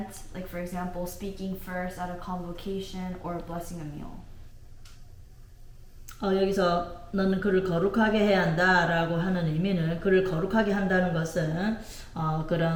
like for example, speaking first at a convocation or blessing a meal. 여기서 너는 그를 거룩하게 해야 한다라고 하는 의미는 그를 거룩하게 한다는 것은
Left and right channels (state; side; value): identical; both; correlation 1.00